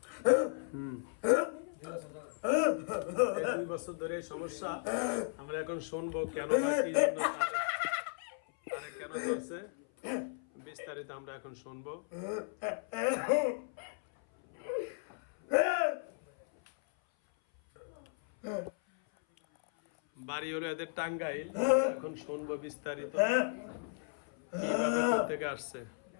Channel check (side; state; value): right; silent; 54 dB below the other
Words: 2 বছর ধরে সমস্যা। আমরা এখন শুনবো কেন না কি জন্য তারে কেন করছে, বিস্তারিত আমরা এখন শুনবো। বাড়ি হলো এদের টাঙ্গাইল। এখন শুনবো বিস্তারিত কিভাবে থেকে আসছে।